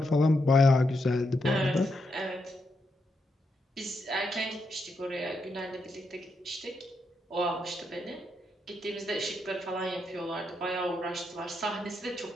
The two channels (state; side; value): normal; both; correlation 0.82